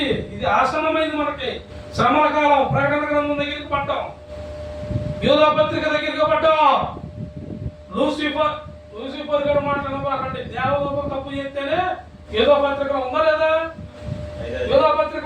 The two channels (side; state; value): both; identical; correlation 1.00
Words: ఇది ఆసన్నమైంది మనకి. శ్రమల కాలం. ప్రకటన గ్రంథం దగ్గరికి పడ్డాం, యూదా పత్రిక దగ్గరికి పడ్డాం. లూసిఫర్ గారు మాట్లాడబాకండి. దేవదూతం తప్పు చేస్తేనే యూదా పత్రిక ఉందా లేదా? యూదా పత్రిక